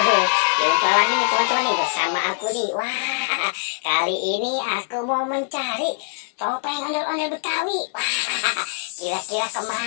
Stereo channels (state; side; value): silent; right; digital silence